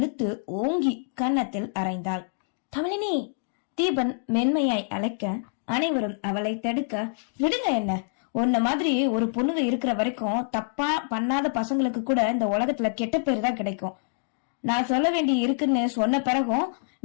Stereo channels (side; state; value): right; silent; digital silence